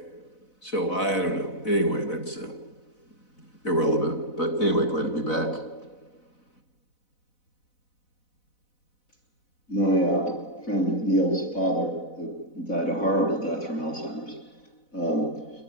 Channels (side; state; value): right; late; 4.0 ms